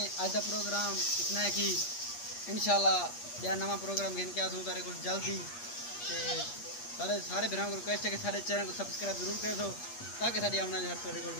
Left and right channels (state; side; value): late; right; 8.4 ms